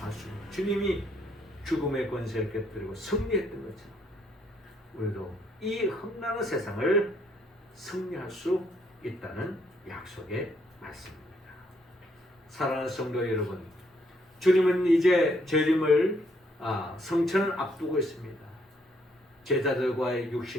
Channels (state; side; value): normal; both; correlation 0.70